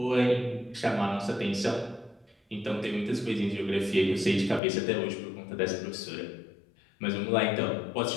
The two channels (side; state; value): right; drops out; at 4.6 s